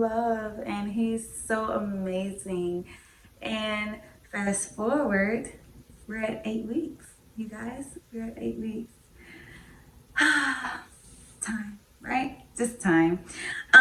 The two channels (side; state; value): both; identical; correlation 1.00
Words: and he's so amazing. And fast forward, we're at 8 weeks. You guys, we're at 8 weeks. Time, right? Just time.